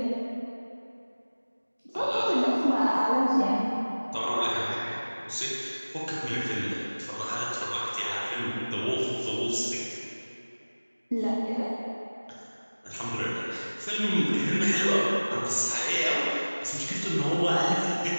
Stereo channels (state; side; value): inverted; both; correlation -1.00